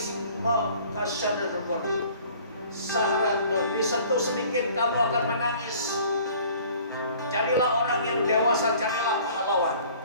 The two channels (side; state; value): both; inverted; correlation -0.51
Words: disentuh sedikit kamu akan menangis. Jadilah orang yang dewasa, jadilah pahlawan.